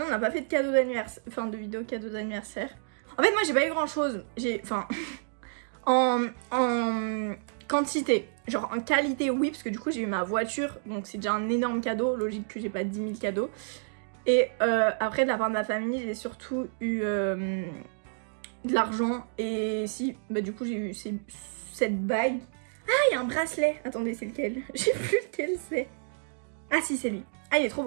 on n'a pas fait de cadeau d'anniversaire, enfin de vidéo cadeau d'anniversaire. En fait, moi, j'ai pas eu grand chose. J'ai, enfin, en quantité, genre en qualité, oui, parce que du coup, j'ai eu ma voiture, donc c'est déjà un énorme cadeau. Logique que j'ai pas 10 000 cadeaux. Et après, de la part de ma famille, j'ai surtout eu de l'argent. Et si, bah du coup, j'ai eu cette bague. Ah, il y a un bracelet. Attendez, c'est lequel? Je sais plus lequel c'est. Ah si, c'est lui. Ah, il est trop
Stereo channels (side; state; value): left; silent; digital silence